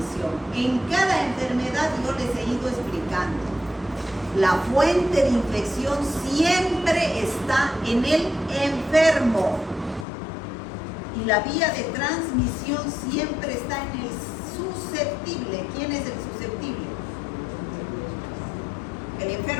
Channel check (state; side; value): drops out; right; at 10.1 s